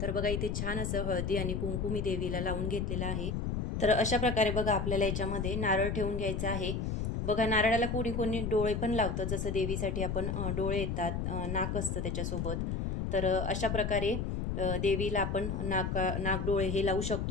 बघा इथे छान असं हळदी आणि कुंकू मी देवीला लावून घेतलेलं आहे। तर अशा प्रकारे बघा आपल्याला याच्यामध्ये नारळ ठेवून घ्यायचा आहे। बघा नारळाला कोणी कोणी डोळे पण लावतं, जसं देवीसाठी आपण डोळे येतात, नाक असतं त्याच्यासोबत। तर अशा प्रकारे देवीला आपण नाक डोळे हे लावू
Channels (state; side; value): noise; left; rumble, 1 dB below the sound